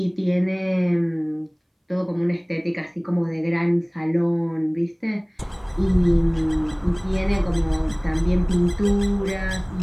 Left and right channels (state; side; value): identical; both; correlation 1.00